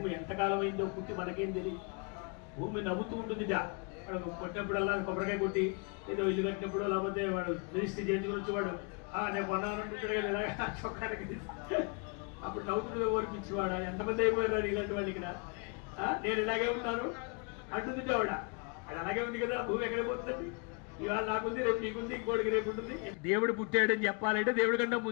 ఎంతకాలం అయిందో పుట్టి మనకేం తెలియదు. భూమి నవ్వుతూ ఉంటుందిట. కొట్టినప్పుడల్లా కొబ్బరికాయ కొట్టి ఏదో ఇల్లు కట్టినప్పుడు లేకపోతే వాడు రిజిస్ట్రీ చేయించుకుని వచ్చేవాడు నేను కొన్నానంటే చొక్కానికి అప్పుడు నవ్వుతుండే ఓర్పించేవాడు. ఎంతమంది అయిపోయారు ఇలాంటి వాళ్ళు ఇక్కడ. నేను ఇలాగే ఉన్నాను అంటుంది ఆవిడ. అది అలాగే ఉంది కదా, భూమి ఎక్కడ పోతుంది. ఇవాళ నాకుంది, రేపు నీకుంది, ఇంకోటికి రేపు ఉంటుంది. దేవుడు పుట్టాడని చెప్పాలంటే దేవుడి కన్నా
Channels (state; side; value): quieter; right; 35.0 dB